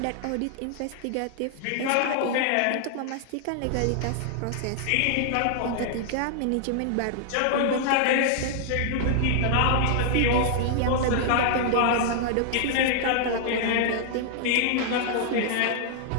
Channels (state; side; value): different; both; correlation -0.01